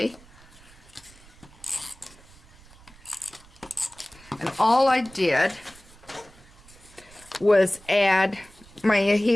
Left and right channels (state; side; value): noise; right; rumble, 24 dB below the sound